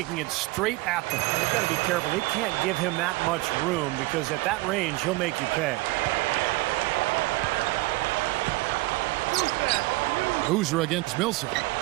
it straight at them. They've got to be careful. They can't give him that much room because at that range, he'll make you pay. Boozer against Millsap.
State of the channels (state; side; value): quieter; left; 21.0 dB